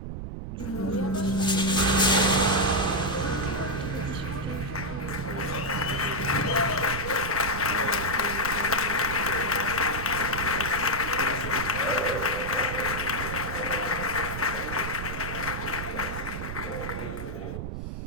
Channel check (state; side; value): noise; right; rumble, 6 dB below the sound